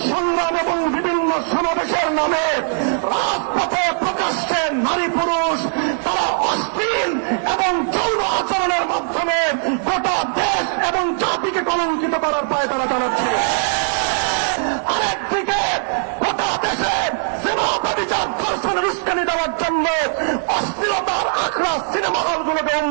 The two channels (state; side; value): silent; left; digital silence